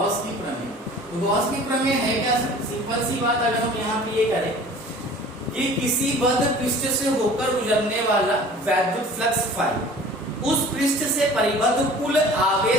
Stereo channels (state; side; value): normal; both; correlation 0.45